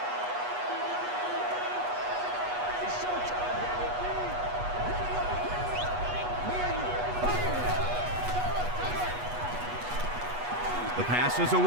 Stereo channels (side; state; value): left; late; 8.2 ms